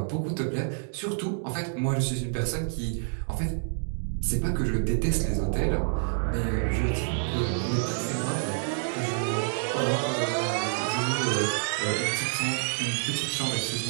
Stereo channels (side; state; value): left; silent; digital silence